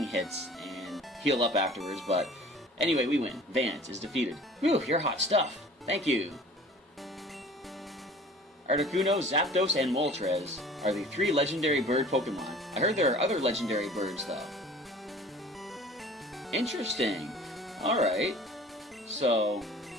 hits and heal up afterwards. But anyway, we win. Vance is defeated. Whew, you're hot stuff. Thank you. Articuno, Zapdos, and Moltres are the 3 legendary bird Pokemon. I heard there are other legendary birds, though. Interesting. Alright. So...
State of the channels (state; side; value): normal; both; correlation 0.46